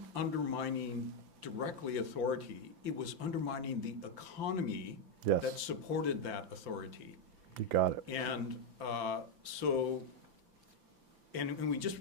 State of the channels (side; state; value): left; late; 5.9 ms